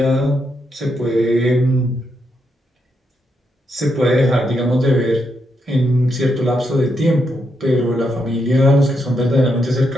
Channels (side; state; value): both; normal; correlation 0.81